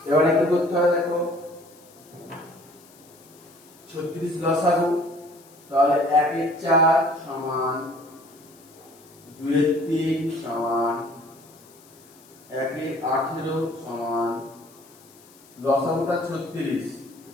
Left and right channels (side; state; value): left; noise; hiss, 25 dB below the sound